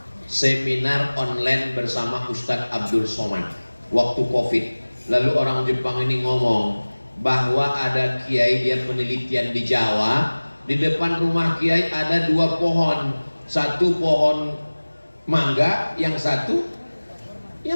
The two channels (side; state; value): both; inverted; correlation -1.00